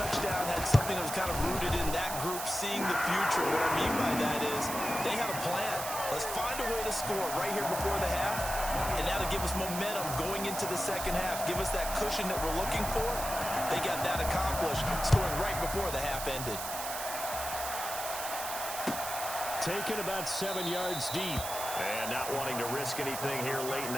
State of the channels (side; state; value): right; noise; hiss, 6 dB below the sound